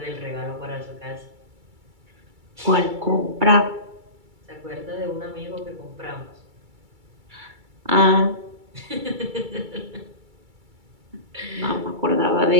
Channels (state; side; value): late; left; 2.3 ms